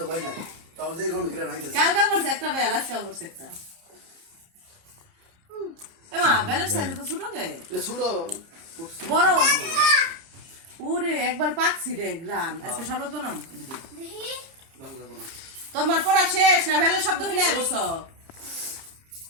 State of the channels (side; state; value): left; late; 30 ms